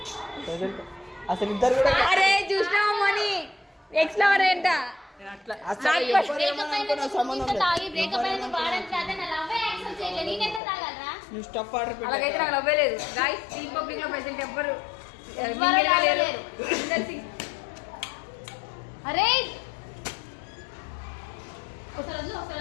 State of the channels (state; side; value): drops out; right; at 10.6 s